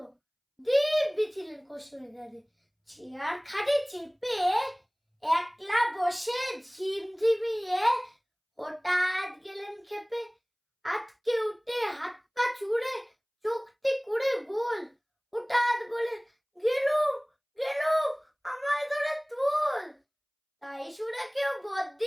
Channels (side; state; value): both; identical; correlation 1.00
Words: দিব্যি ছিলেন কসুরিদারে, চেয়ার খাটে চেপে একলা বসে ঝিমঝিমিয়ে হঠাৎ গেলেন খেপে। আজকে উঠে হাত পা চুড়ে চোখটি করে গোল, হঠাৎ বলে গেলুম গেলুম আমায় ধরে তুল। তাই শুনে কেউ